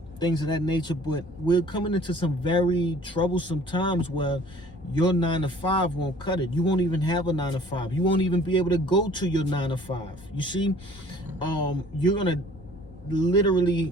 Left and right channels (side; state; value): both; normal; correlation 0.52